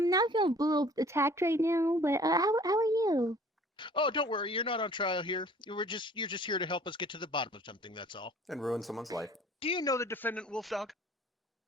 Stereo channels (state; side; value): normal; both; correlation 0.51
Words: Not feeling a little attacked right now, but how are you? Oh, don't worry. You're not on trial here. You're just here to help us get to the bottom of something. That's all. And ruin someone's life. Do you know the defendant, Wolfdog?